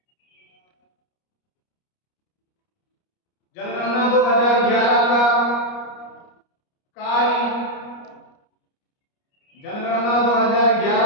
जनगणना 2011 का कार्य, जनगणना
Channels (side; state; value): right; late; 29 ms